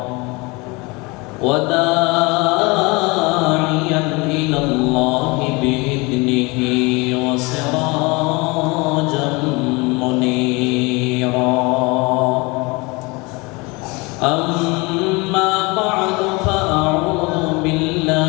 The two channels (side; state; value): right; quieter; 26.0 dB